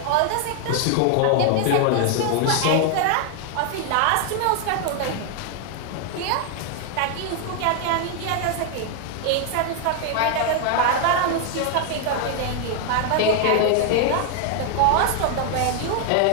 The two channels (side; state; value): both; different; correlation 0.00